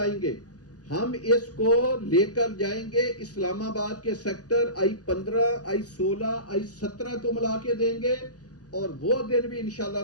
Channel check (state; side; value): late; right; 0.67 ms